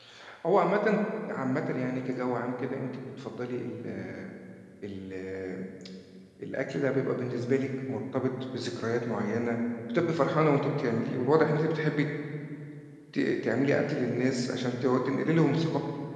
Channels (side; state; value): both; identical; correlation 1.00